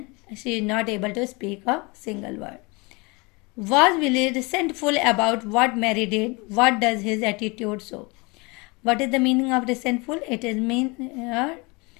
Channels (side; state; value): right; quieter; 27.3 dB